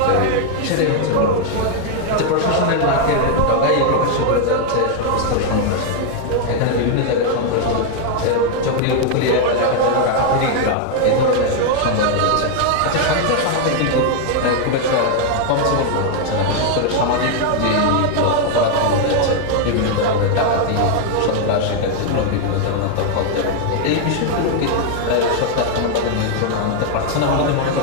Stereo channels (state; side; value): different; both; correlation 0.00